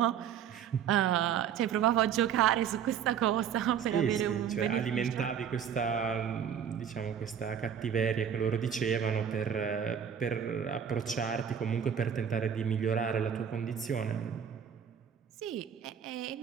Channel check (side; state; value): left; quieter; 8.3 dB